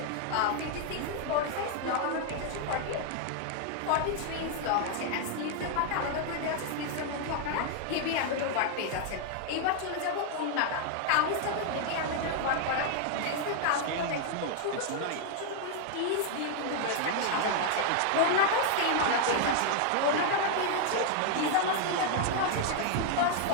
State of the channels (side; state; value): both; different; correlation 0.00